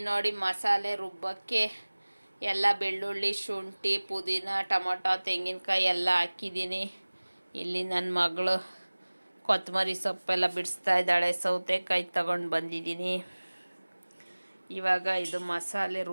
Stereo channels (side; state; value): both; inverted; correlation -1.00